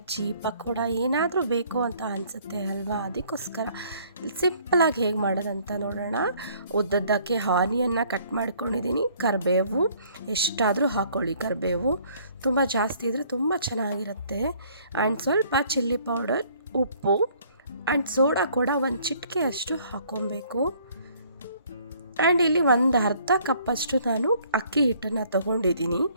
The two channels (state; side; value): inverted; both; correlation -0.60